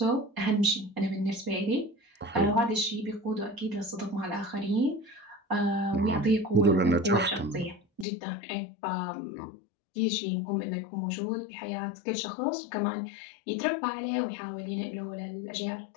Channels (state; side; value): drops out; right; at 8.1 s